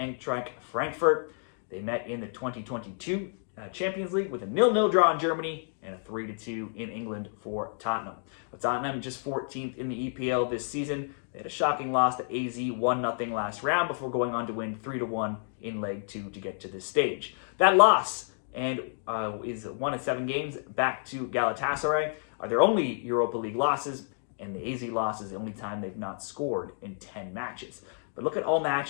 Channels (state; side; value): silent; right; digital silence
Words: Frankfurt. They met in the 2022 Champions League with a 0-0 draw in Germany and a 3-2 in England for Tottenham. But Tottenham just 14th in the EPL this season. They had a shocking loss to AZ 1-0 last round before going on to win 3-1 in Leg 2 to get to this stage. That loss and is 1 of 7 games back to Galatasaray are their only Europa League losses, and the AZ loss is the only time they've not scored in 10 matches. But look at all